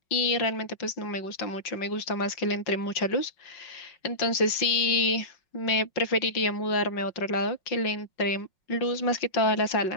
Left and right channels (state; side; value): late; right; 5.5 ms